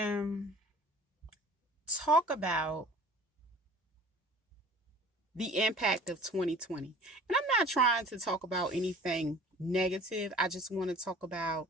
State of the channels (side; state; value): both; normal; correlation 0.46